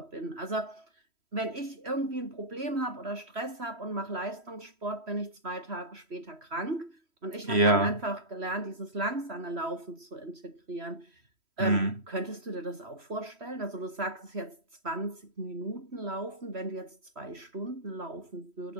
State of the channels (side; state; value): left; late; 3.1 ms